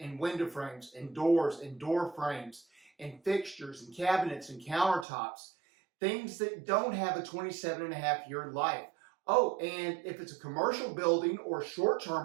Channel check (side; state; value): left; drops out; at 5.1 s